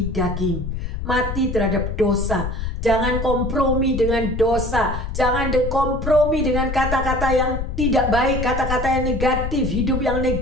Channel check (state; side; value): noise; left; rumble, 4 dB below the sound